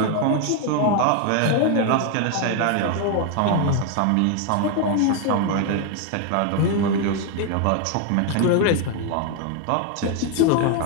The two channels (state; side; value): different; both; correlation 0.01